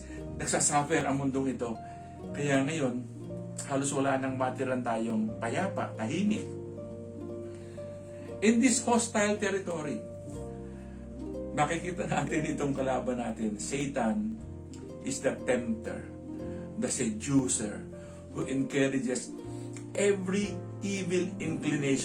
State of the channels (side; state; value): both; identical; correlation 1.00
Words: nagsasuffer ang mundong ito. Kaya ngayon, halos wala nang matiran tayong payapa, tahimik. In this hostile territory, makikita natin itong kalaban natin. Satan is the tempter, the seducer, who encourages every evil